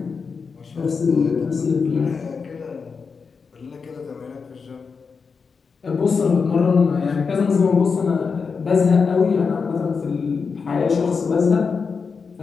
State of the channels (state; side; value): quieter; right; 5.3 dB